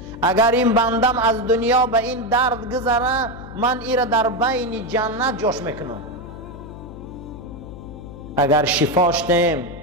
اگر این بندم از دنیا به این درد گذره، من ایره در بین جنت جاش میکنم. اگر شفاش دیم،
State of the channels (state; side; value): noise; left; hum, 13 dB below the sound